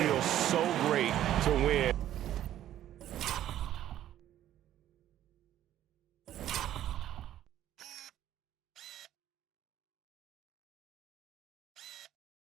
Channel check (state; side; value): quieter; left; 12.2 dB